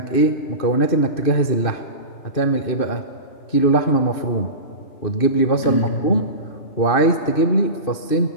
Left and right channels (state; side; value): late; right; 2.6 ms